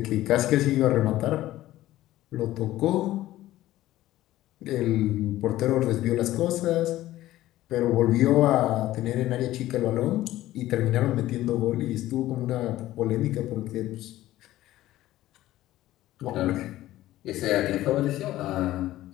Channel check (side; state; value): right; quieter; 15.2 dB